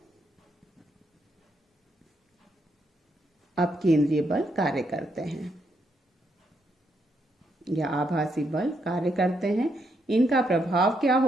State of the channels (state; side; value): normal; both; correlation 0.78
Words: अपकेंद्रीय बल कार्य करते हैं या आभासी बल कार्य करते हैं। इनका प्रभाव क्या